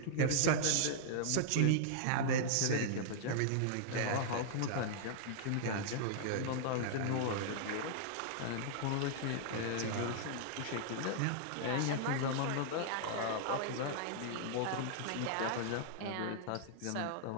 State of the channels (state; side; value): different; both; correlation -0.01